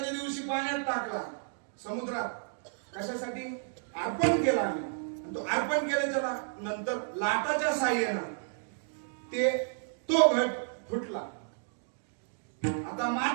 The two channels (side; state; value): left; silent; digital silence